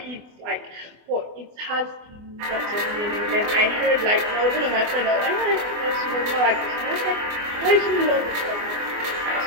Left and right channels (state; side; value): late; left; 24 ms